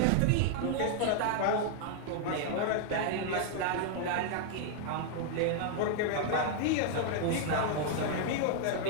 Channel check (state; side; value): different; both; correlation 0.00